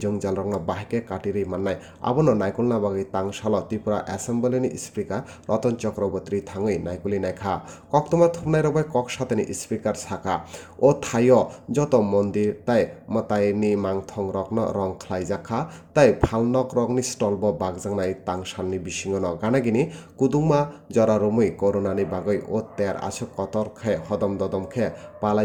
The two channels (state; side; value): identical; both; correlation 1.00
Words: jongjal rokno bahike katiri mannai abono naikolna bagui tangsalo Tripura Assembly ni Speaker Ratan Chakraborty Thangwi naikuli naikha koktoma thupnai rok bai kok satani Speaker saka o thaio joto mondir tai Mwtai ni mangthong rokno rong khlaijak kha tai phalnok rokni stall bo bagjangnai tangsalni bisingo no ganagini kudungma jorarumui corona ni bagui o ter asuk kotor khe hodom dodom khe